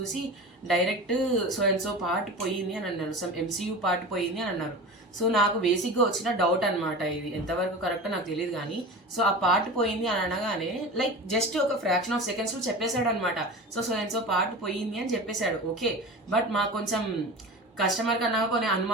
direct so and so part పోయింది అని అన్నారు, సమ్ MCU పార్ట్ పోయింది అని అన్నారు. సో నాకు బేసిక్గా వచ్చిన డౌట్ అనమాట, ఇది ఎంతవరకు కరెక్టో నాకు తెలియదు కానీ. సో ఆ పార్ట్ పోయింది అని అనగానే లైక్ జస్ట్ ఒక ఫ్రాక్షన్ ఆఫ్ సెకండ్స్లో చెప్పేశాడు అనమాట. సో అండ్ సో పార్ట్ పోయింది అని చెప్పేశాడు, ఓకే. బట్ మాకు కొంచెం కస్టమర్ కన్నా కొన్ని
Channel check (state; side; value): normal; both; correlation 0.32